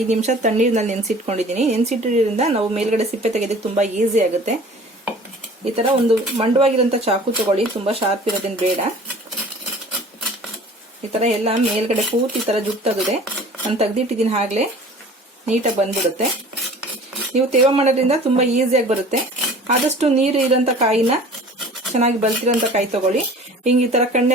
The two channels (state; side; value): normal; both; correlation 0.45